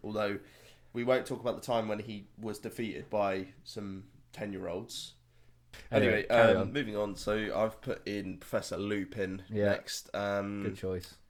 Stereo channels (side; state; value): both; identical; correlation 1.00